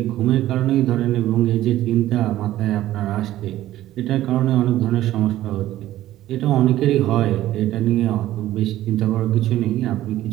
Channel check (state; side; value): quieter; left; 14.2 dB